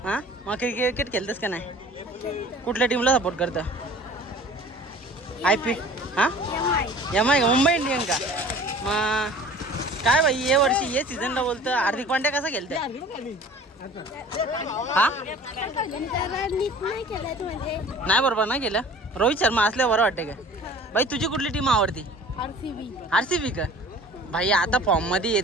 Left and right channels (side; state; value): both; normal; correlation 0.45